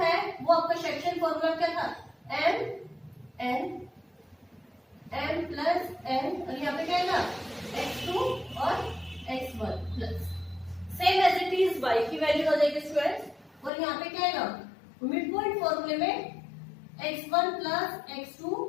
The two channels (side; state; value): right; drops out; at 13.7 s